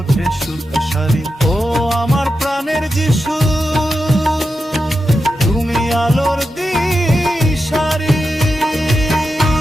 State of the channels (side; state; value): both; normal; correlation 0.89